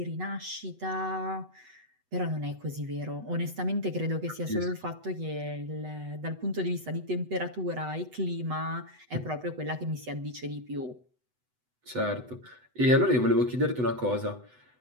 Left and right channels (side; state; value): left; late; 8.0 ms